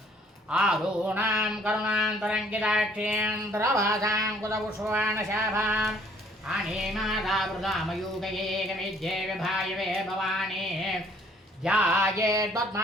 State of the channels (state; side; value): normal; both; correlation 0.60